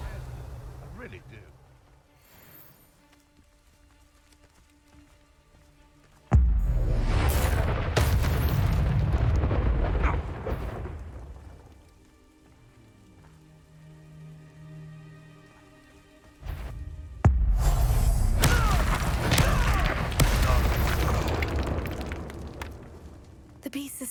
head. I really do. The beasts are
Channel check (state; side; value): identical; both; correlation 1.00